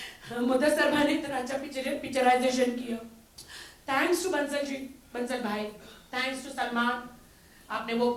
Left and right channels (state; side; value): identical; both; correlation 1.00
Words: मुदस्सर भाई ने इतना अच्छा पिक्चराइजेशन किया। थैंक्स टू बंसल जी, बंसल भाई, थैंक्स टू सलमान, आपने वो